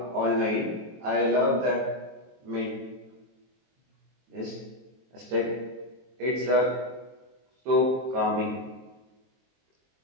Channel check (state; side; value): late; left; 23 ms